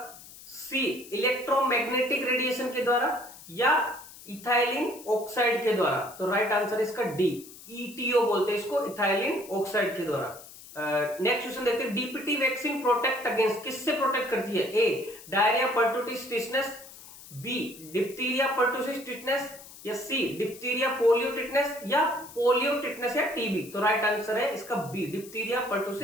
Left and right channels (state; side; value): noise; left; hiss, 18 dB below the sound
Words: सी इलेक्ट्रोमैग्नेटिक रेडिएशन के द्वारा, या इथाइलिन ऑक्साइड के द्वारा। तो राइट आंसर इसका डी, ईटीओ बोलते हैं इसको, इथाइलिन ऑक्साइड के द्वारा। नेक्स्ट क्वेश्चन देखते हैं, डीपीटी वैक्सीन प्रोटेक्ट अगेंस्ट, किससे प्रोटेक्ट करती है? A diarrhoea pertussis tetanus, B diphtheria pertussis tetanus, या सी डिप्थीरिया पोलियो टिटनेस, या पोलियो टिटनेस या टीबी। तो राइट आंसर है इसका B, diphtheria